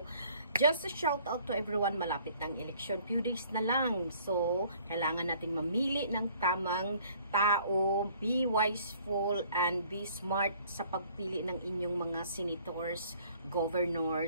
just a shout out to everyone. Malapit ng election. Few days na lang. So, kailangan nating mamili ng tamang tao. Be wiseful and be smart sa pagpili ng inyong mga senators,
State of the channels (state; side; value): inverted; both; correlation -0.57